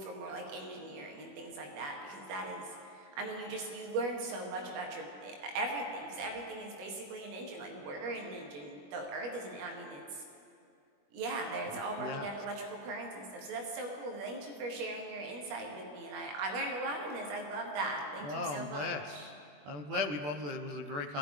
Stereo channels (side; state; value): left; late; 21 ms